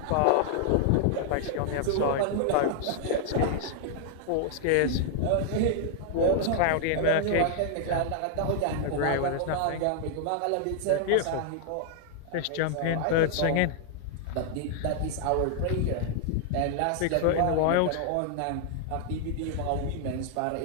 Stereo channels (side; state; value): both; different; correlation 0.00